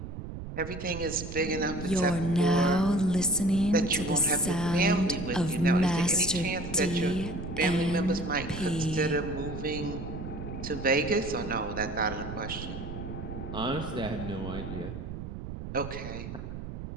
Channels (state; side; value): noise; right; rumble, 9 dB below the sound